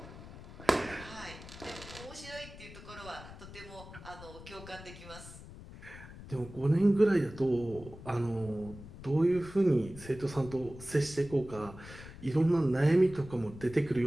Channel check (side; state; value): left; noise; rumble, 15 dB below the sound